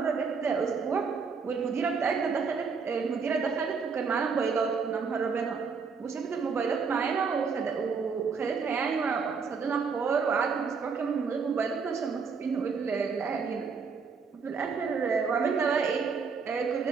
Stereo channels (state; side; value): quieter; left; 5.4 dB